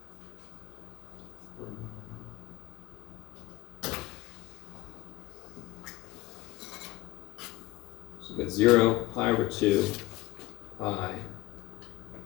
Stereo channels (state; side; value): quieter; right; 18.6 dB